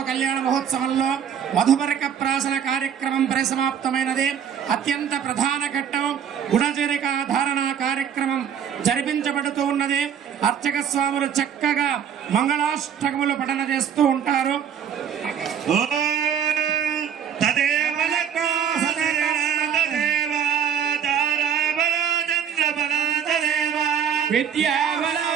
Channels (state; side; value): quieter; left; 8.3 dB